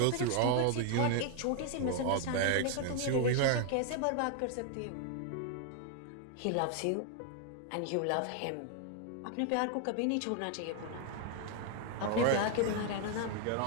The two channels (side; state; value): both; different; correlation 0.00